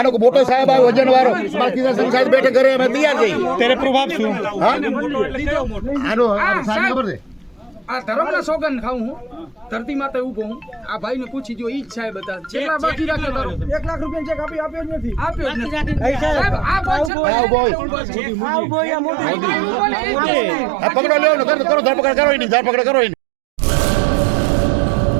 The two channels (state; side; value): drops out; left; at 17.1 s